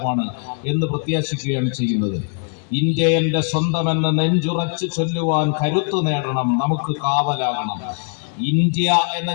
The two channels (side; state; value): right; silent; 56 dB below the other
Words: എന്ന് പ്രത്യാശിക്കുകയാണ് ചെയ്യുന്നത്. ഇന്ത്യ എന്റെ സ്വന്തമെന്ന് നെഞ്ചുറച്ചു ചൊല്ലുവാൻ കരുത്തു നേടണം, നമുക്ക് കാവലാകണം. ഇന്ത്യ എന്ന